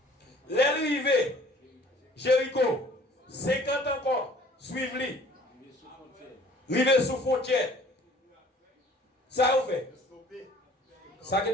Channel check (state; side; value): normal; both; correlation 0.52